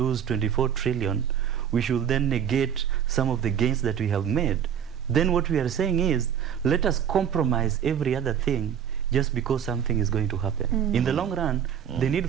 24 trillion, we should then negate some of the gains that we have made. Then what we are saying is, let us compromise every other thing just because something is going to happen. In the long run, the need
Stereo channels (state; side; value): quieter; left; 8.7 dB